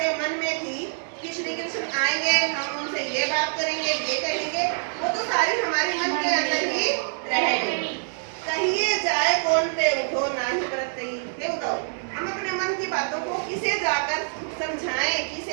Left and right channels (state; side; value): silent; left; digital silence